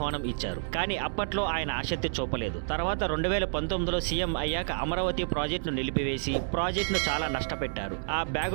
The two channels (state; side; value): silent; left; 58 dB below the other